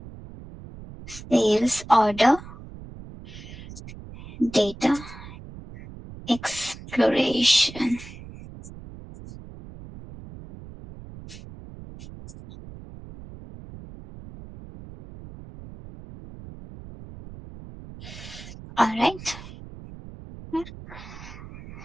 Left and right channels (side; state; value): right; noise; rumble, 15 dB below the sound